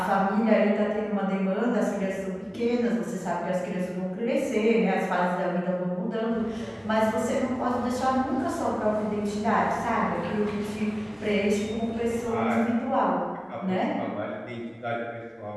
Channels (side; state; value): both; identical; correlation 1.00